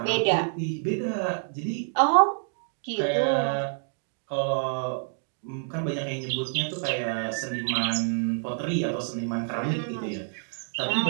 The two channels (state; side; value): silent; left; digital silence